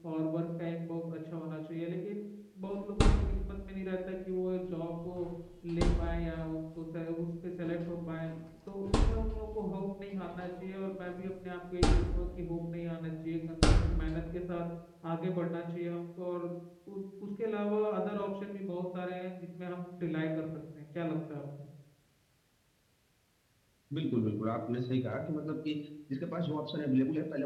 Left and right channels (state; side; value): identical; both; correlation 1.00